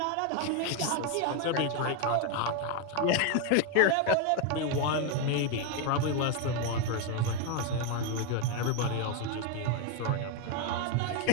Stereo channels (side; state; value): both; different; correlation 0.01